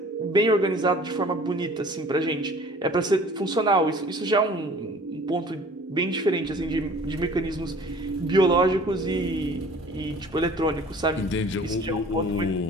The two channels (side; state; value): both; normal; correlation 0.49